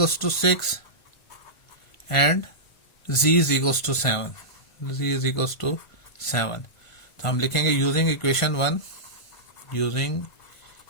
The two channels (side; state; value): right; late; 1.5 ms